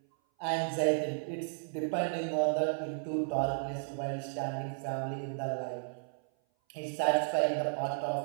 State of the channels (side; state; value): left; silent; 55 dB below the other